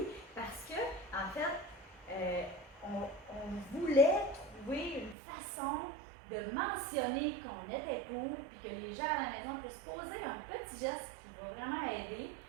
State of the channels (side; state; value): left; drops out; at 5.2 s